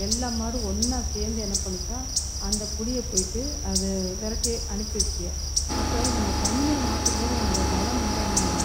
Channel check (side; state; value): both; identical; correlation 1.00